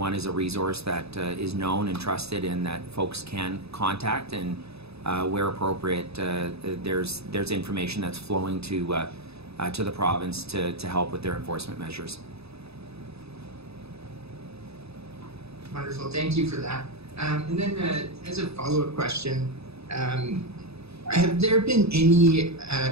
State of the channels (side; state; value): left; late; 0.79 ms